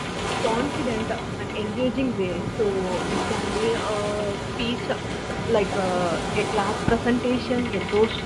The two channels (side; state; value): both; identical; correlation 1.00